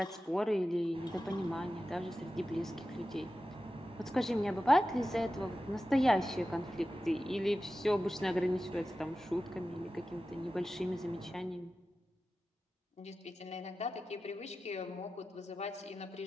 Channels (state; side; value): normal; both; correlation 0.93